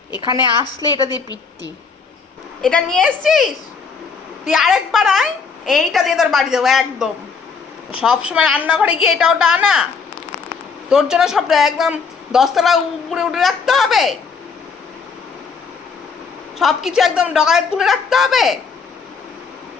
এখানে আসলে এটা দিয়ে পিটটি। এটা নিয়ে এসছিস? তুই আরেকবার আয়, এইটা দিয়ে তোর বাড়ি দেবো একদম। সব সময় রান্নাঘরে গিয়ে এটা ওটা আনা, তোর জন্য সব একদম 10 তলা উপরে উঠে রাখতে হবে, সব কিছু একদম ডগায় তুলে রাখতে হবে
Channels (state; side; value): quieter; right; 5.4 dB